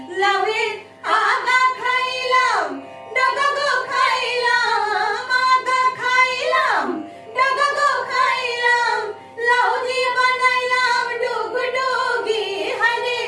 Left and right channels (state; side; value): identical; both; correlation 1.00